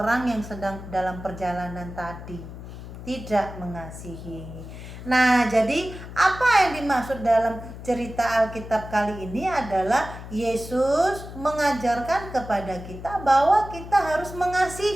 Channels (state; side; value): noise; left; hum, 12 dB below the sound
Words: yang sedang dalam perjalanan tadi. Tidak mengasihi. Nah, jadi apa yang dimaksud dalam cerita Alkitab kali ini adalah Yesus mengajarkan kepada kita bahwa kita harus